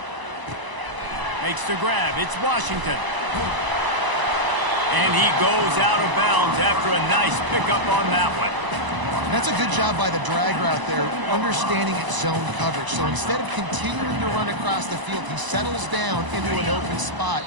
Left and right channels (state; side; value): late; left; 1.0 ms